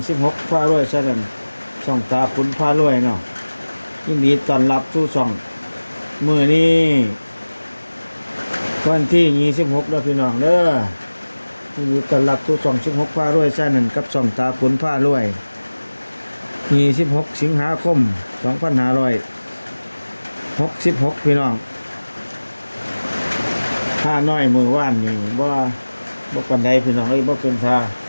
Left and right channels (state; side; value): inverted; both; correlation -1.00